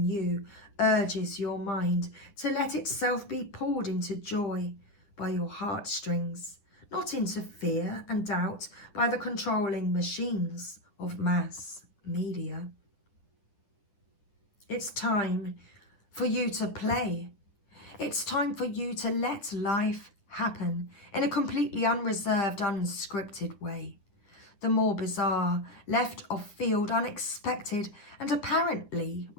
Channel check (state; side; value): late; right; 10 ms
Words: you urges your mind to let itself be pulled into joy by your heartstrings, not into fear and doubt by the controlling machines of mass media. It's time for you to play. It's time for you to let life happen in a completely unreserved, unscripted way. The more bizarre, left of field, unexpected, and apparently